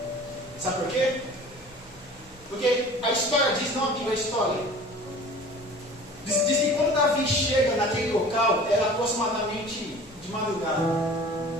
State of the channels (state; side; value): normal; both; correlation 0.43